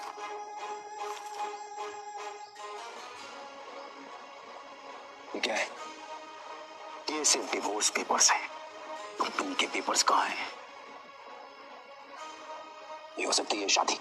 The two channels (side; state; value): both; identical; correlation 1.00